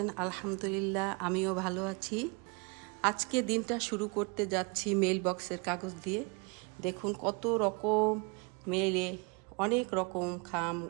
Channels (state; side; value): quieter; left; 31.5 dB